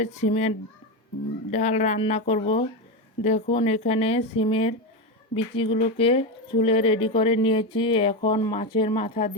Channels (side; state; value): both; normal; correlation 0.13